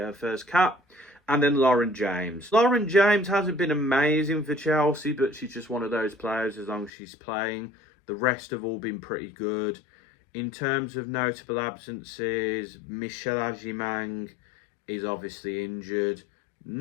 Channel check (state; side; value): drops out; right; at 6.9 s